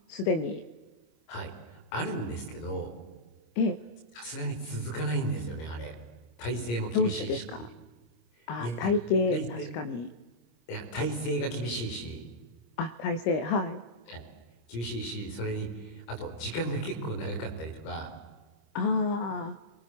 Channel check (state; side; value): late; right; 25 ms